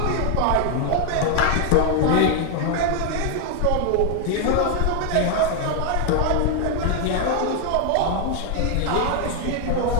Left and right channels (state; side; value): different; both; correlation 0.00